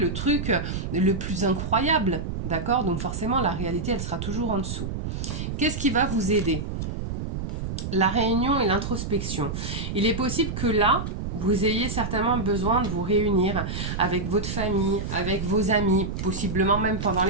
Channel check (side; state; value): right; noise; rumble, 4 dB below the sound